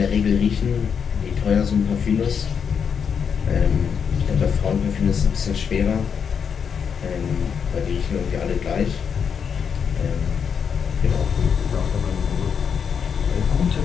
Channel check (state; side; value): quieter; right; 6.9 dB